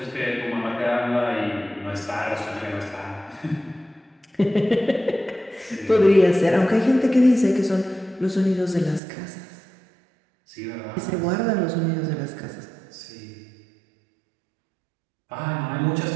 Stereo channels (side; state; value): left; drops out; at 9.0 s